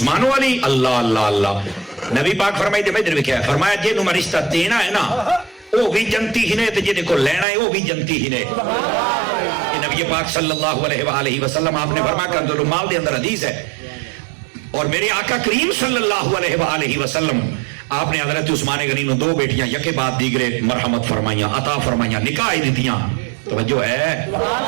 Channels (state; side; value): drops out; left; at 7.5 s